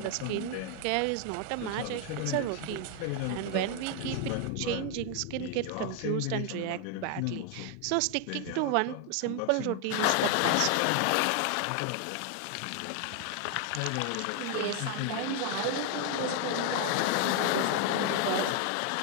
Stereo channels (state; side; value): different; both; correlation 0.00